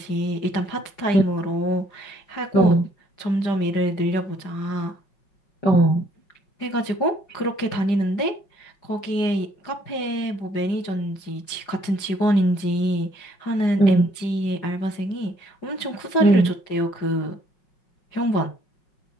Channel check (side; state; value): right; late; 5.0 ms